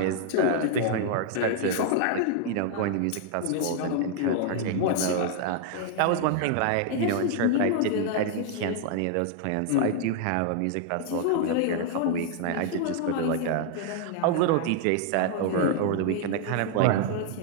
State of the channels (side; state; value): both; different; correlation 0.00